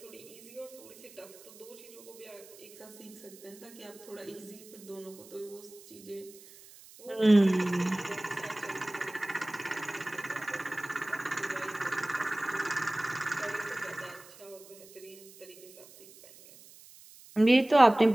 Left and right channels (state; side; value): noise; right; hiss, 21 dB below the sound